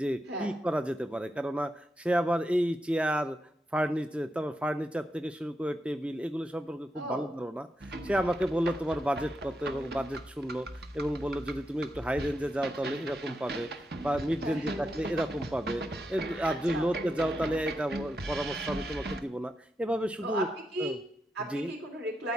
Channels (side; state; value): both; normal; correlation 0.85